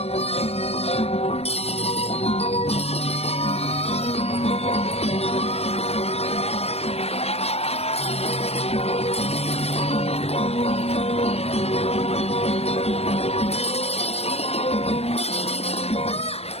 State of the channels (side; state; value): right; late; 0.30 ms